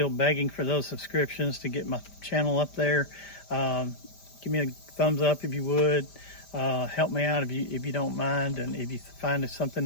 begging for those subscriptions to get my channel up there. Give me a thumbs up if you would. Help me out if you don't mind, and if you find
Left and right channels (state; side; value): late; right; 5.1 ms